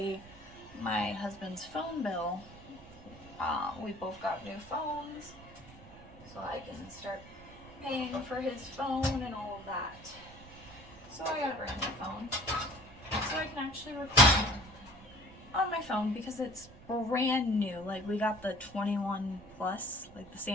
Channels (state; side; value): noise; right; rumble, 19 dB below the sound